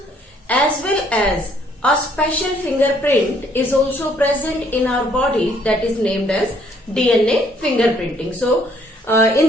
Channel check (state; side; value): normal; both; correlation 0.65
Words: as well as a special fingerprint is also present in our body that is named as DNA fingerprinting. So, in